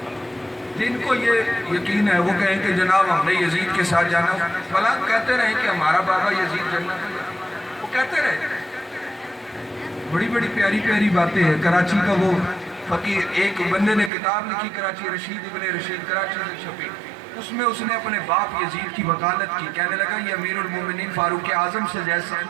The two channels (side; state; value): left; drops out; at 14.1 s